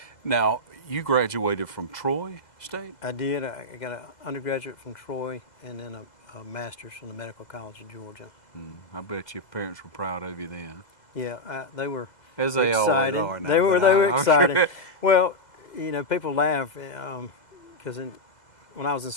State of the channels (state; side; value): late; right; 2.0 ms